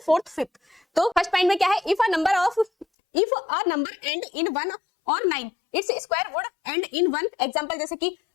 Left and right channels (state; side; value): drops out; right; at 2.9 s